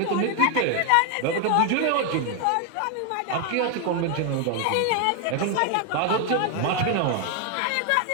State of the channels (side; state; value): both; different; correlation 0.01